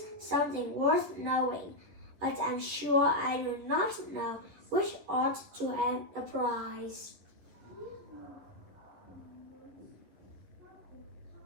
something worth knowing, but I'm sure I do not know which ought to have the prize."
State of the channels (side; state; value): left; late; 11 ms